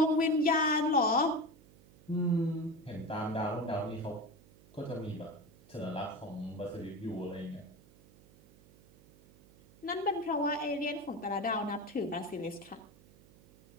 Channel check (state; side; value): noise; right; hum, 25 dB below the sound